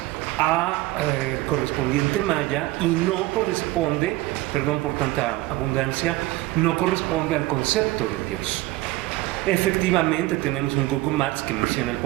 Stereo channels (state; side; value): quieter; left; 18.3 dB